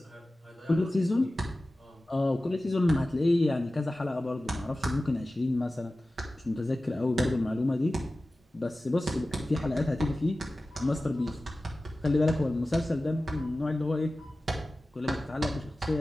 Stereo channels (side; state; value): both; normal; correlation 0.96